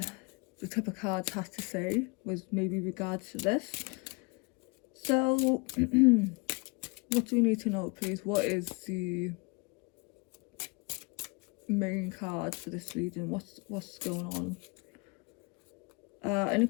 tip of cards has to say with maybe regards to this. So what do we need to know, please? What is the main card for this reading? What's going on?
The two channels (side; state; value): right; quieter; 30.1 dB